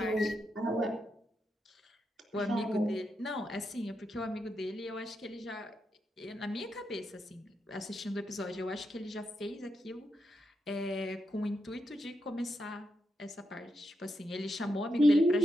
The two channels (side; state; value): both; normal; correlation 0.84